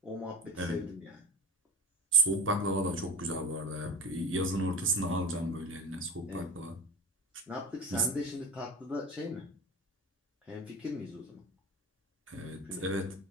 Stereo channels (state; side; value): normal; both; correlation 0.30